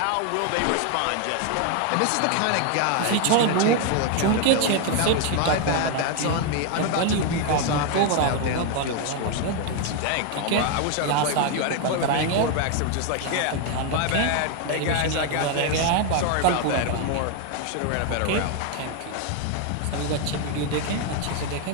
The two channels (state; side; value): different; both; correlation 0.01